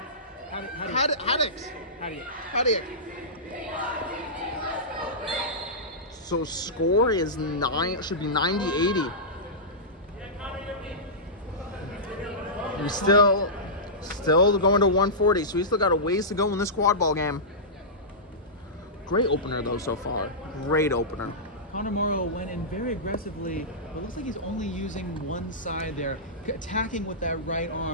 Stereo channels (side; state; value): both; normal; correlation -0.16